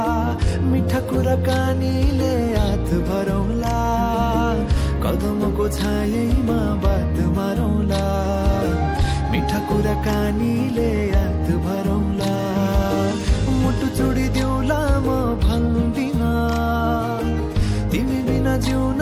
मिठा कुराकानीले हात भरौला कदमको छायैमा बात मारौला मिठा कुराकानीले हात भरौला मुटु चुडिदिउला म भन्दिन तिमी बिना जिउन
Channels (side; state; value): both; identical; correlation 1.00